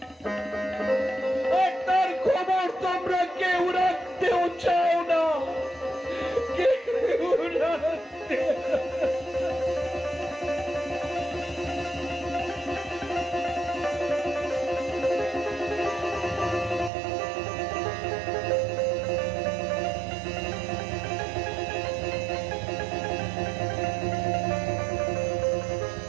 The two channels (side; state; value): left; drops out; at 16.9 s